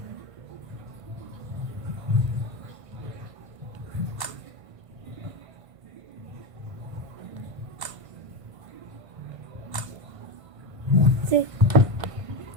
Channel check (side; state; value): left; late; 1.5 ms